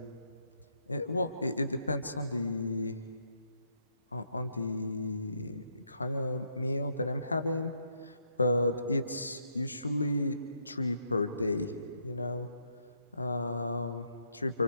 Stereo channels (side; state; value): both; inverted; correlation -0.76